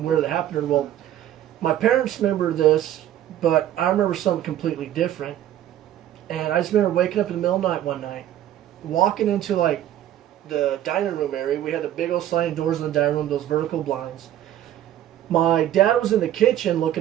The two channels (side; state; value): left; quieter; 12.1 dB